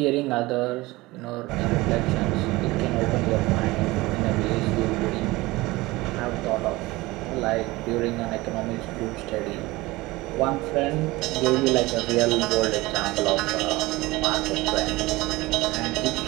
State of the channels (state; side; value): quieter; left; 20.6 dB